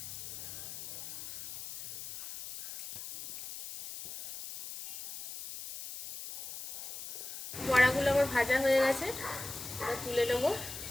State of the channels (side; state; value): left; noise; hiss, 9 dB below the sound